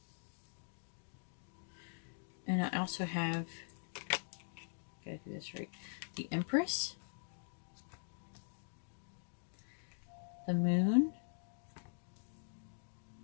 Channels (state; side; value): silent; right; digital silence